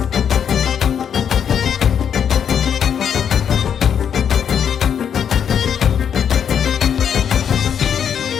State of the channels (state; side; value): quieter; right; 8.2 dB